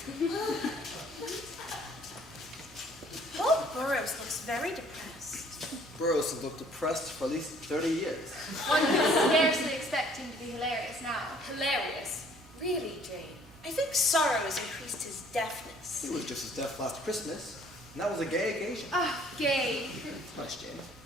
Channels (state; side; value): normal; both; correlation 0.58